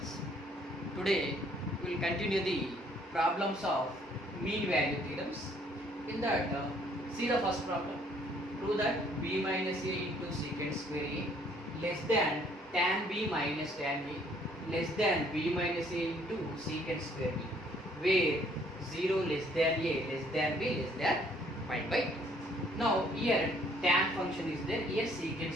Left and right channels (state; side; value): normal; both; correlation 0.63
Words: Today we will continue the problems of mean value theorems. In that, see the first problem. Prove that b minus a into secant square a less than tan b minus tan a less than b minus a into secant square b, where 0 less than a less than b less than pi by 2. Now here tan function is there, here secant